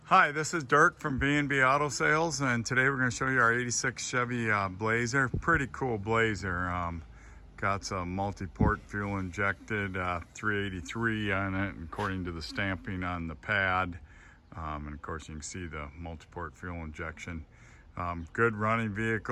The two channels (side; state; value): both; identical; correlation 1.00